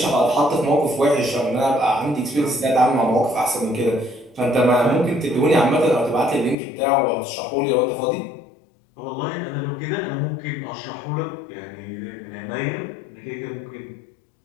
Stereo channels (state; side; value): drops out; right; at 6.6 s